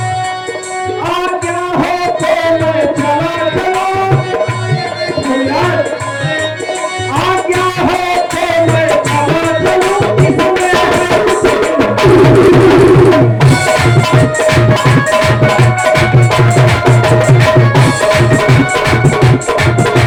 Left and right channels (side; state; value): both; identical; correlation 1.00